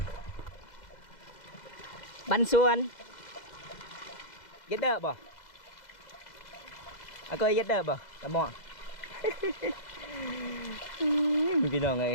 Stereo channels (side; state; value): right; late; 2.1 ms